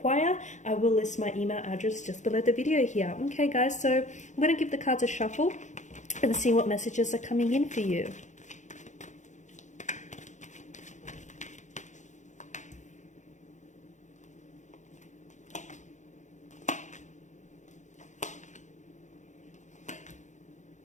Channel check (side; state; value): right; late; 0.35 ms